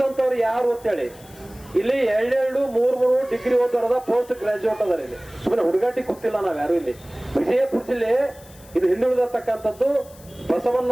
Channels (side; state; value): left; noise; hiss, 23 dB below the sound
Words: ಯಾರು ಅಂತೇಳಿ. ಇಲ್ಲಿ 2-3 ಡಿಗ್ರಿ ಓದೋರದ ಪೋಸ್ಟ್ ಗ್ರಾಜುಯೇಟ್ ಅದಾರ. ಇಲ್ಲಿ ಸುಮ್ಮನೆ ಹುಡುಗಾಟಿ ಗೊತ್ತಿಲ್ಲ ನಾವ್ ಯಾರು. ಇಲ್ಲಿ ವಿಜಯಪುರ ಜಿಲ್ಲೆ ಇದು ಹಿಂದುಳಿದತಕ್ಕಂಥದ್ದು,